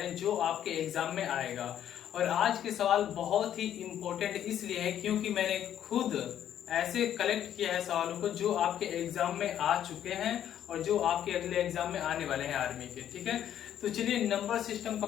हैं जो आपके एग्जाम में आएगा। और आज के सवाल बहुत ही इम्पोर्टेंट इसलिए है क्योंकि मैंने खुद ऐसे कलेक्ट किया है सवालों को जो आपके एग्जाम में आ चुके हैं और जो आपके अगले एग्जाम में आने वाले हैं आर्मी के। ठीक है, तो चलिए नंबर सिस्टम का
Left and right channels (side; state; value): right; quieter; 10.6 dB